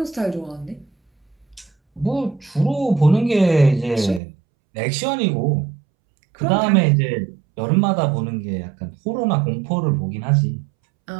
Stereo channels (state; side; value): drops out; left; at 4.2 s